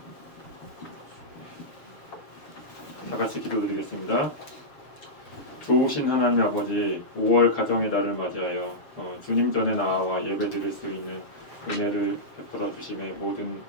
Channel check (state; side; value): late; right; 7.0 ms